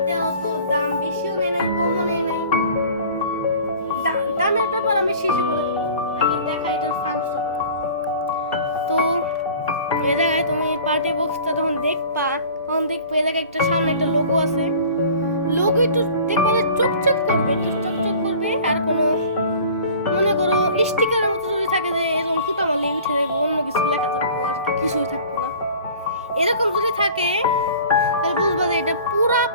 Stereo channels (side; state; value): both; inverted; correlation -0.45